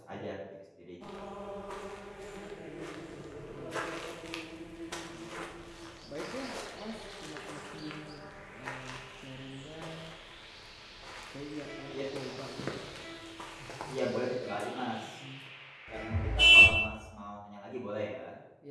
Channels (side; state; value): both; identical; correlation 1.00